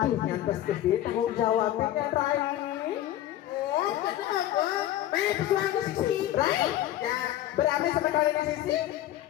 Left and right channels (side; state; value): right; quieter; 13.3 dB